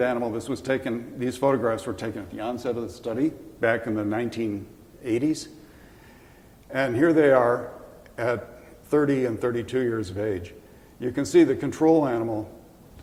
animal. These photographs were taken at the onset of the study back in the 1980s. And here they are at 30 and 32 years of age. You can see the control animal,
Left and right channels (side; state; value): both; identical; correlation 1.00